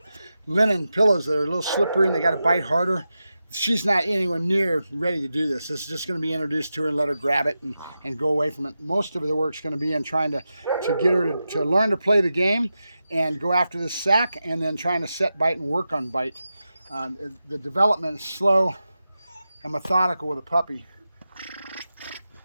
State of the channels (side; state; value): both; inverted; correlation -0.91